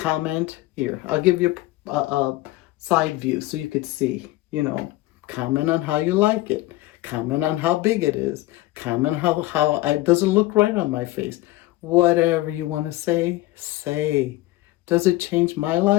here. I'll give you a side view so you could see, you know, comment on how you like it. Comment on how big it is. Comment how it doesn't look right on my face. Whatever you want to say, say. Does it change my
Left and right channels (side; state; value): right; quieter; 18.0 dB